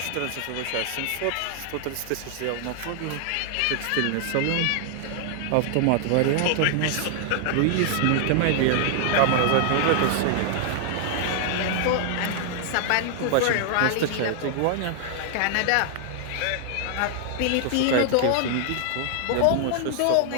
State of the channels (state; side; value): different; both; correlation 0.00